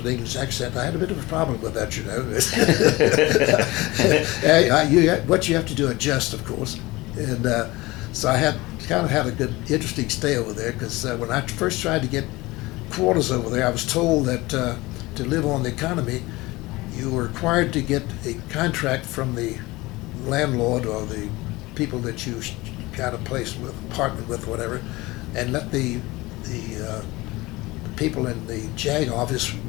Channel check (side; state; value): right; quieter; 20.9 dB